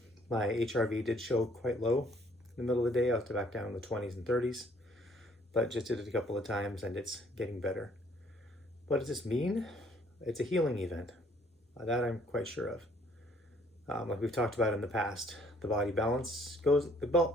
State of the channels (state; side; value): normal; both; correlation 0.62